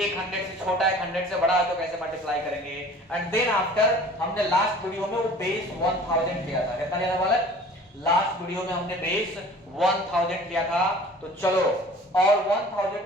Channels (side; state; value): both; normal; correlation 0.46